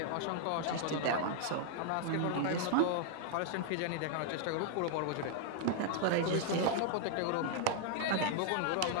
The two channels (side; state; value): both; different; correlation 0.00